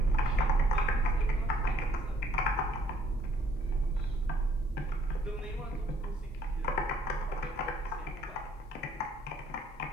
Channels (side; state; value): both; normal; correlation 0.63